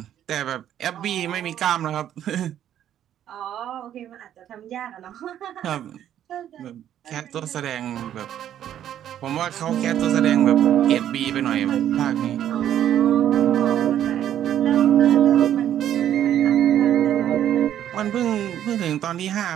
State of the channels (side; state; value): left; quieter; 10.8 dB